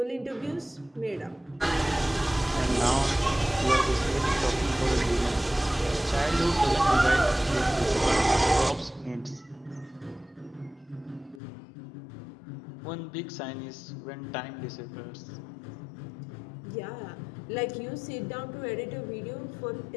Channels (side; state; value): right; drops out; at 11.4 s